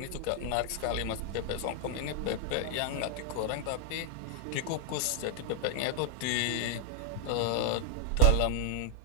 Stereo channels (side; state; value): both; different; correlation 0.00